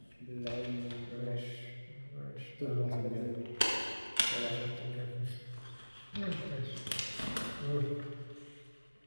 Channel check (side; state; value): both; inverted; correlation -1.00